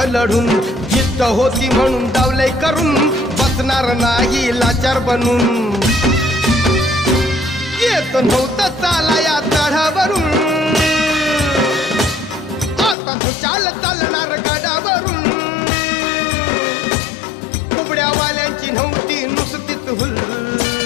लढून जिद्द होती म्हणून डावलंय करून बसणार नाही लाचार बनून येत नव्हतं चाला या चढावरून आता तू चालणार गडावरून कुबड्यावाल्यांची नव्हती नुसतीच हुल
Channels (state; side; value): drops out; right; at 13.0 s